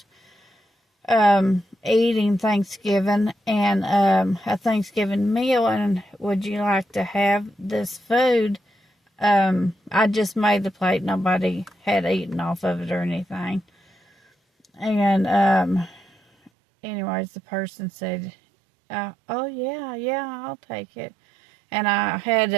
eating Thanksgiving and a Thanksgiving meal, and would you like to have this food? I just made the plate. Nobody had eaten off of it or anything. And anyways, the person said, oh yeah, I'll take it. And I had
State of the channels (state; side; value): drops out; left; at 16.5 s